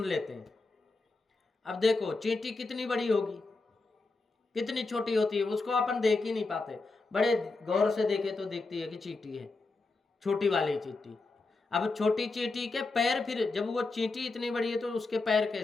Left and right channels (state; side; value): quieter; right; 3.6 dB